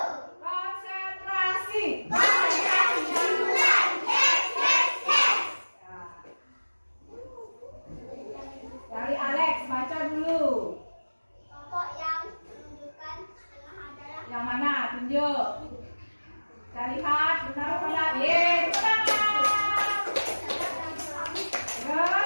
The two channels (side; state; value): both; inverted; correlation -1.00